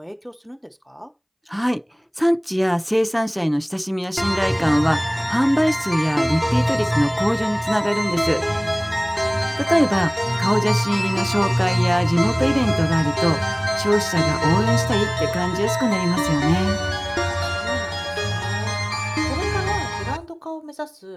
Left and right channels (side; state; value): both; identical; correlation 1.00